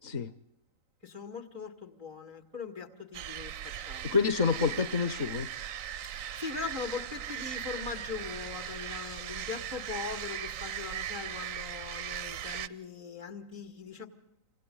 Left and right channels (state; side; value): late; left; 3.9 ms